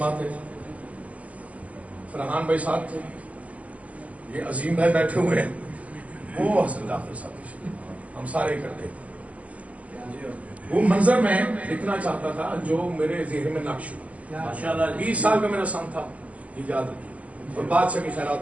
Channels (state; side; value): late; left; 0.071 ms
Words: تھے، فرحان بھائی صاحب تھے، یہ عظیم بھائی بیٹھے ہوئے ہیں، وہ حسن جعفر صاحب، ہم سارے اکٹھے۔ وہ منظر میں لکھنا چاہتا تھا جو میرے ذہن میں نقش ہوا، 20 سال کا میرا سن تھا، یاد رکھیے، اور بادشاہ کی خیرات